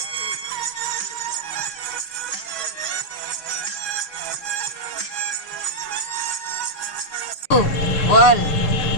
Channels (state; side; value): late; right; 6.6 ms